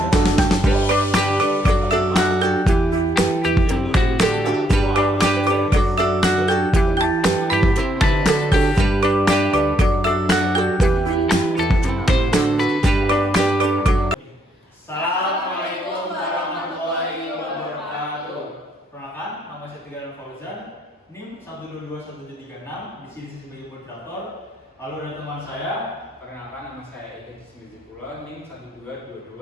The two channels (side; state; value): both; normal; correlation 0.75